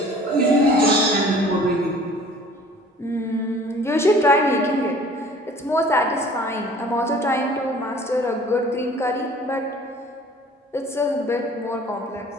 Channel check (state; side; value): normal; both; correlation 0.49